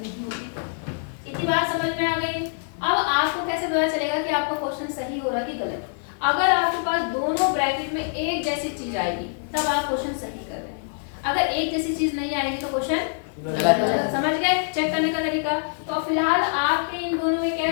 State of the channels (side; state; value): right; silent; 62 dB below the other